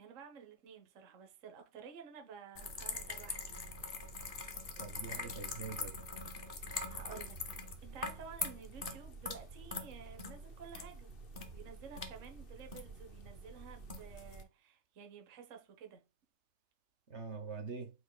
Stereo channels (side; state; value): left; late; 3.3 ms